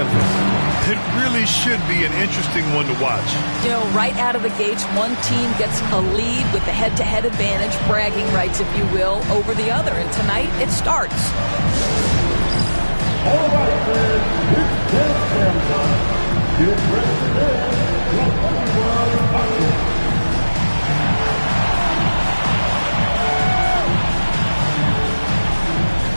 It really should be an interesting one to watch. You know, right out of the gates, one team gets a lead with the head-to-head advantage, bragging rights, if you will, over the other. And tonight, it starts. All right, fans, it's 10 time. Get ready for this.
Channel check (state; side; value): inverted; both; correlation -1.00